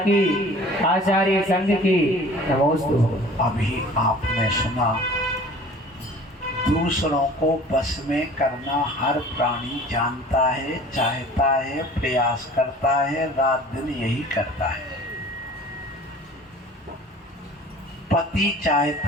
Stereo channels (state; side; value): normal; both; correlation 0.46